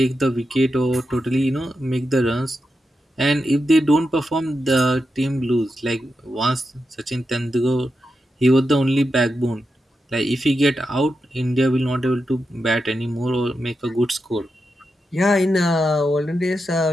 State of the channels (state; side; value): normal; both; correlation 0.88